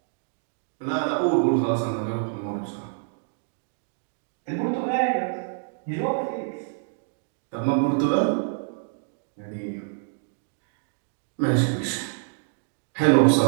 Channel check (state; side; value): silent; left; digital silence